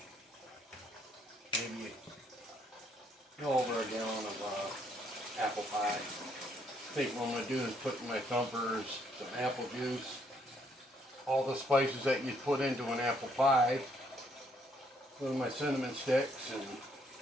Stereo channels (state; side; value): normal; both; correlation 0.70